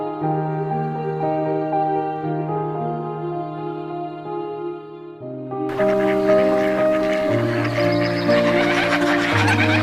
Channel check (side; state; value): both; identical; correlation 1.00